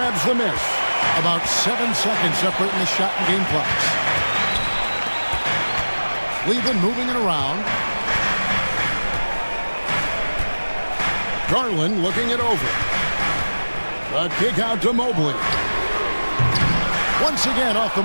the miss. About 7 seconds separating the shot and game clocks. Cleveland moving it around. Garland looking it over. The kick out to Mobley. Once again off the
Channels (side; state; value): both; inverted; correlation -1.00